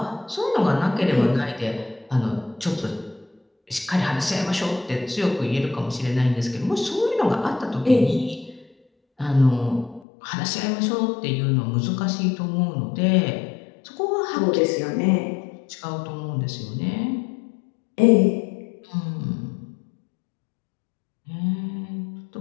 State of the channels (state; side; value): drops out; right; at 10.1 s